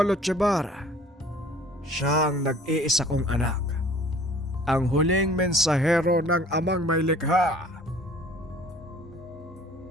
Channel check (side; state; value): both; normal; correlation 0.51